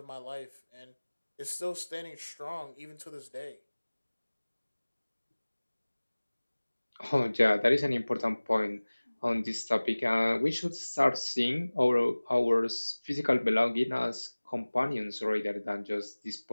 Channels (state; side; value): inverted; both; correlation -1.00